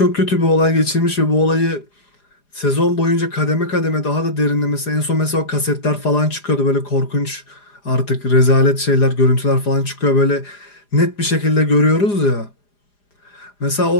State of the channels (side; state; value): right; late; 4.9 ms